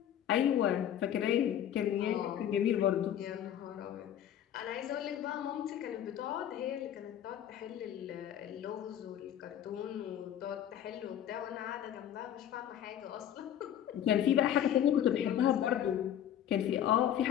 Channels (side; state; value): right; quieter; 10.4 dB